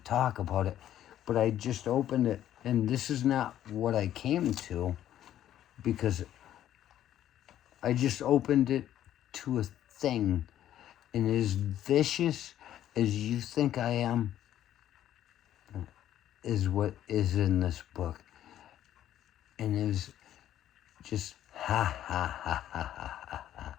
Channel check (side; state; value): right; quieter; 11.7 dB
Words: about it, but I just opened it, and this is not what I came to, because I just opened it to a thing, and as vicious as you think I am, is what is in this book, and is just ha ha ha ha ha ha,